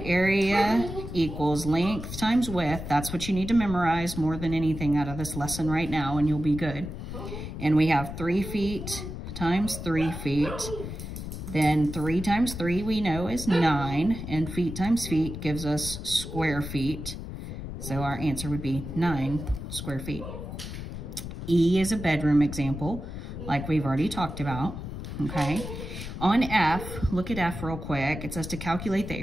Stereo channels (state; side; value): noise; left; rumble, 8 dB below the sound